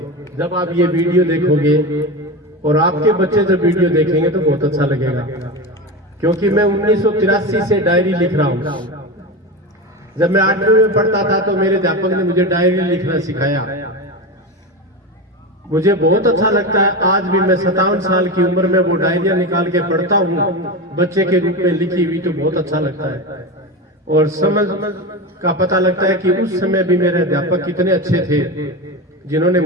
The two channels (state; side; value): normal; both; correlation 0.21